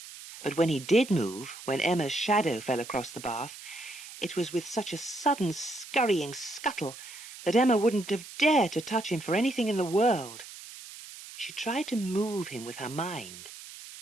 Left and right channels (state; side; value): noise; right; hiss, 14 dB below the sound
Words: but when he did move, when Emma's shadow fell across the bath, it was with such a sudden scurrying scuttle that Emma wouldn't have dared to touch him for anything in the world. She tried to move him with her mind,